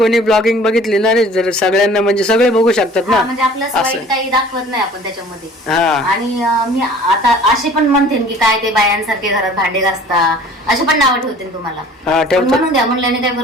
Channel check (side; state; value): both; normal; correlation 0.49